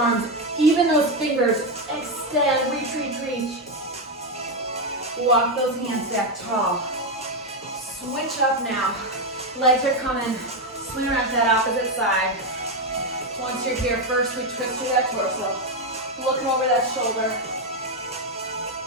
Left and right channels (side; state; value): both; normal; correlation 0.07